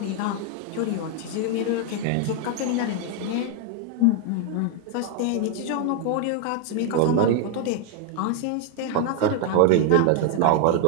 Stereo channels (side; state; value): both; different; correlation 0.00